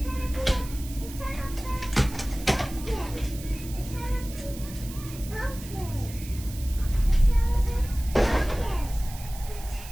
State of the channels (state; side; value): noise; right; hiss, 15 dB below the sound